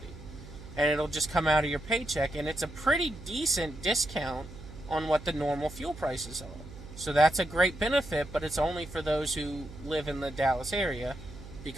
And it'll just come out of your paycheck. And it's a pretty decent discount on what the normal fuel prices are. So that's a great benefit, but it's only for those who live in the Dallas area.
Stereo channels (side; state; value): right; noise; hum, 15 dB below the sound